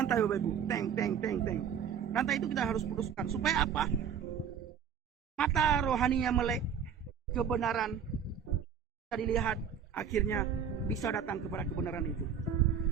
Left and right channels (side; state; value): left; quieter; 7.6 dB